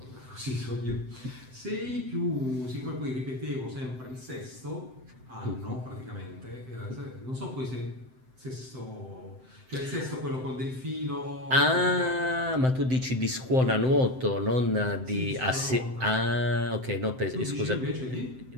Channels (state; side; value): late; left; 7.8 ms